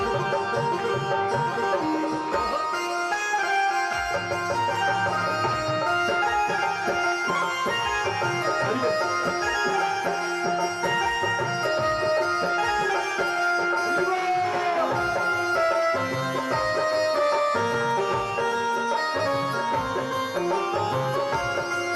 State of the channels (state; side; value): identical; both; correlation 1.00